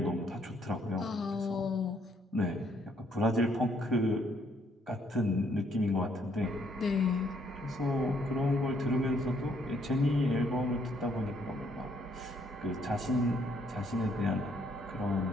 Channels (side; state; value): both; normal; correlation 0.69